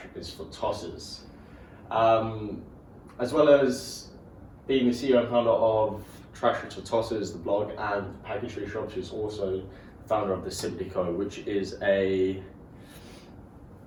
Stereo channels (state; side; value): identical; both; correlation 1.00